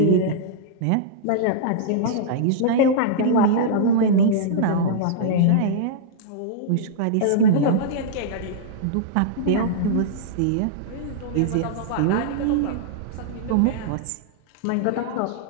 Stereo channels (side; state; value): both; different; correlation -0.02